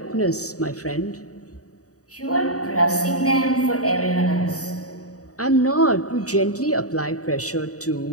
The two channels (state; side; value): late; right; 0.66 ms